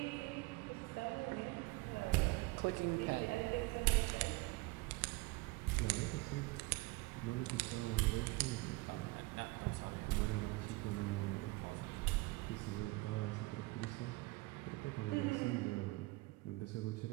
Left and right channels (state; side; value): quieter; left; 22.5 dB